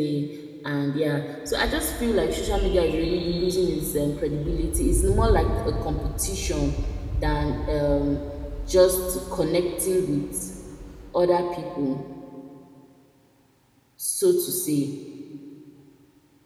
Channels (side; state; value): both; identical; correlation 1.00